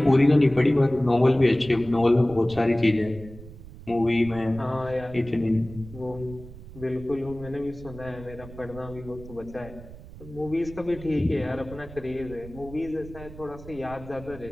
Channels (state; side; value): noise; right; rumble, 16 dB below the sound